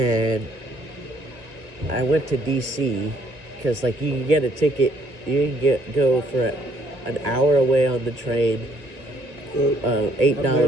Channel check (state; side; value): late; left; 1.9 ms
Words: I went to D.C. because, like, you can get a ticket. You can go for an hour away on the train. But $8. I've